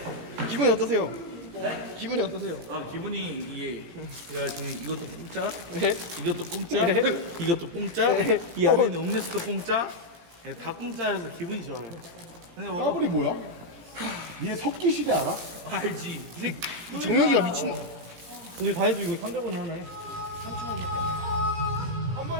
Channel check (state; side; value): late; left; 17 ms